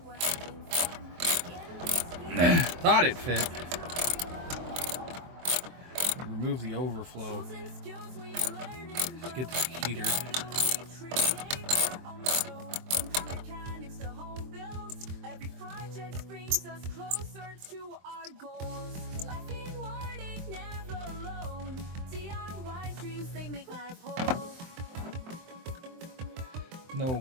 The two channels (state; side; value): late; left; 23 ms